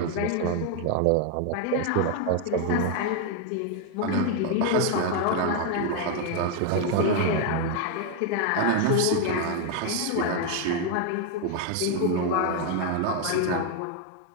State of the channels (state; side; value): different; both; correlation 0.01